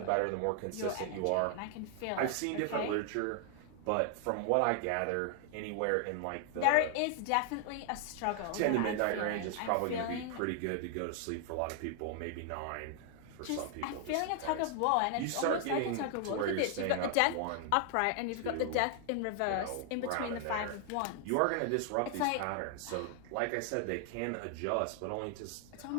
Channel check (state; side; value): different; both; correlation 0.00